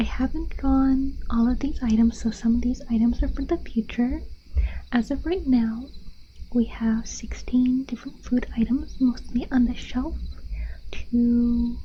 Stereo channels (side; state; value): both; identical; correlation 1.00